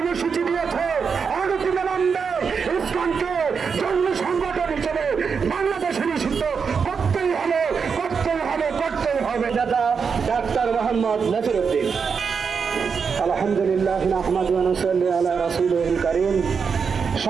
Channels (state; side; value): quieter; left; 5.9 dB